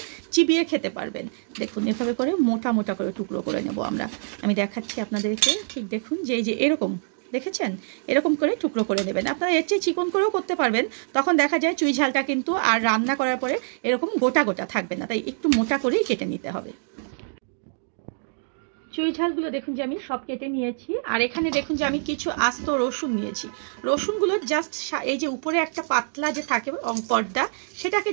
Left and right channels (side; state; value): left; silent; digital silence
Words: চিবিয়ে খেতে পারবেন। দেখুন এভাবে করে মোটা মোটা করে টুকরো করে নেব আমরা। আমি দেখাচ্ছি আপনাদেরকে, ঠিক দেখুন যে এই যে এরকম দেখেছেন, এরকম করে টুকরো করে নেবেন। আপনারা এর চেয়ে চিকন করেও করতে পারবেন, তখন দেখা যায় চুই ঝালটা কিন্তু আর রান্না করার পরে এরকম গোটা গোটা থাকবে না, তাই একটু মোটা করেই কেটে নিতে হবে। চুই ঝালগুলো দেখুন যে আমি সব কেটে নিয়েছি। আর এখানে দেখুন যে আমি কিছু আস্ত রসুন নিয়েছি। রসুনগুলো জাস্ট এই যে উপরে একটা পাতলা যে থাকে পর্দা, সেটাকে